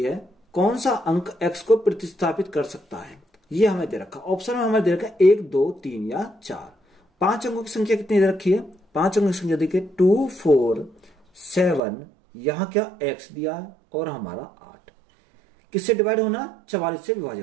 है, कौन सा अंक x को प्रतिस्थापित कर सकता है। ये हमें दे रखा, ऑप्शन में हमें दे रखा 1 2 3 या 4। 5 अंकों की संख्या कितनी दे रखी है, 5 अंकों की संख्या देखिए 2 4 7, यहां क्या x दिया है और हमारा 8, किससे डिवाइड होना, 44 से विभाजित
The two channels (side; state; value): left; drops out; at 11.8 s